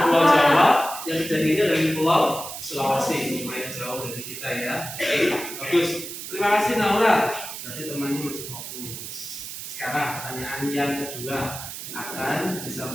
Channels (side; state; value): right; noise; hiss, 9 dB below the sound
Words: Pulau Jawa. Yang kejadiannya dari Pulau Sulawesi. Lumayan jauh dari kita ya. Oke, bagus. Terima kasih Naura. Berarti temannya masih fokus. Sekarang pertanyaan yang kedua akan